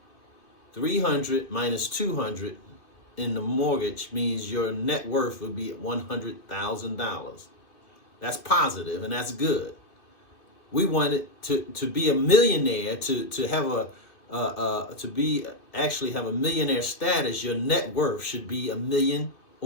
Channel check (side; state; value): right; late; 2.6 ms